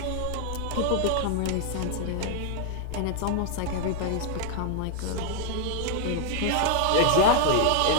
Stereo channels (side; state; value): both; different; correlation 0.00